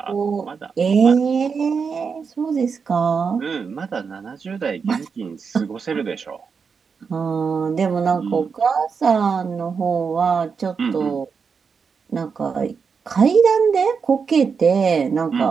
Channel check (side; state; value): left; quieter; 5.7 dB